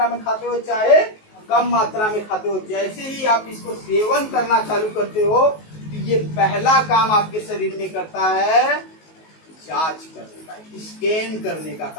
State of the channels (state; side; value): late; right; 19 ms